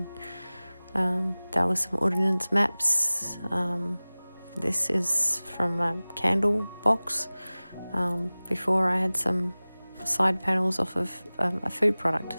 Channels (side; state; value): both; inverted; correlation -0.99